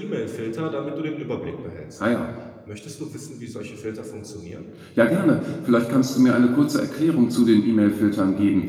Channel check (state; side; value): identical; both; correlation 1.00